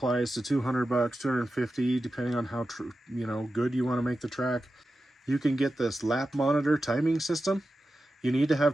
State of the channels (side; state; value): both; normal; correlation 0.92